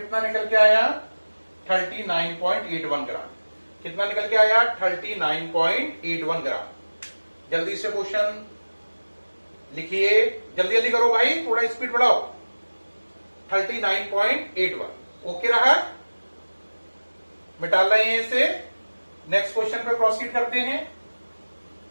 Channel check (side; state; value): both; inverted; correlation -1.00